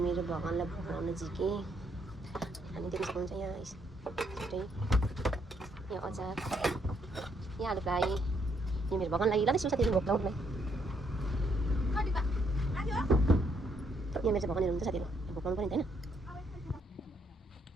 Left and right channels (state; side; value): normal; both; correlation 0.73